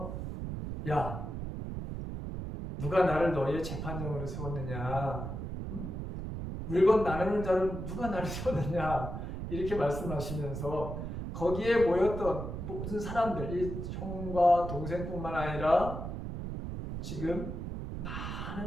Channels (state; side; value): noise; right; rumble, 6 dB below the sound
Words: 야, 누가 나를 너희의 재판장으로 세웠느냐? 물건 나누는 자로 누가 나를 세웠느냐? 이렇게 말씀하시면서 거기에 모였던 모든 사람들, 이 형과 동생뿐만 아니라 지금